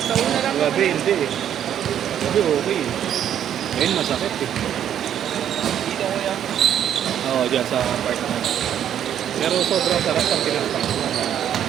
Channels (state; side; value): quieter; left; 9.9 dB